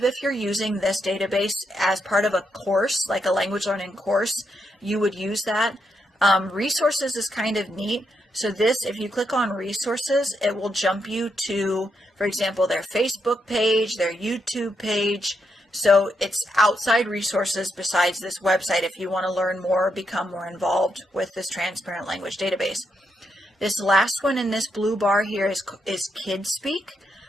if you're using this database as part of a course, like a language learning course, you would use that. Resources is kind of neat. So this, if you click on resources, it will jump you to, for example, their Facebook page, their YouTube page. So it's outside resources besides this website if you want to learn more or become more involved with this transparent language database. This last one in this blue bar here is Kidspeak.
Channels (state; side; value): normal; both; correlation 0.80